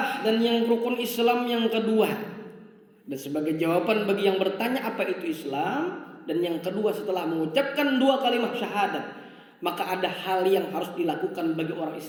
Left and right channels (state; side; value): identical; both; correlation 1.00